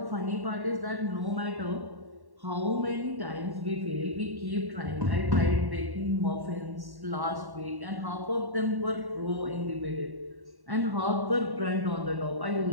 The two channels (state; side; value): late; left; 1.1 ms